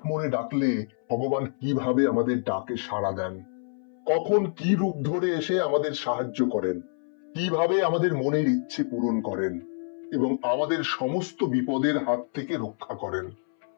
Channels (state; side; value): silent; right; 60 dB below the other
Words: মনে ডাকলে ভগবান কিভাবে আমাদের ডাকে সাড়া দেন, কখন কি রূপ ধরে এসে আমাদের সাহায্য করেন, কিভাবে আমাদের মনের ইচ্ছে পূরণ করেন এবং আমাদের সমস্ত বিপদের হাত থেকে রক্ষা করেন।